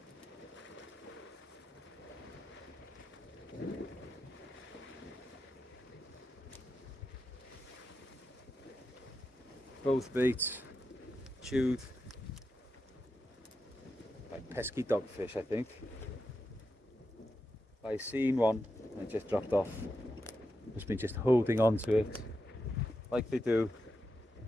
Both baits chewed by pesky dogfish, I think. I seen one and it just dropped off. Must be just holding on to it like they do.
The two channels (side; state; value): both; normal; correlation 0.88